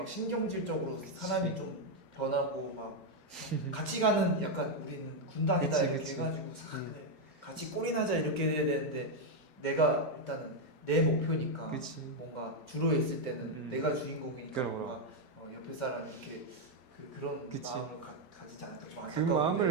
신경질적으로 사람이 좀 변하고 막 같이 가는 약간 우리는 군단이다 그치, 이렇게 그치. 해가지고 그냥 같이 꼴이나자 이렇게 해야 되는데 내가 일단은 내 목표니까 그치. 뭔가 주로 있을 때는 내가 주인공이니까 그럼. 뭔가 옆에 사람 이렇게 그런 그치. 마음을 가지지 않을까 좀 그 안타까운데.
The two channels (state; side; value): normal; both; correlation 0.02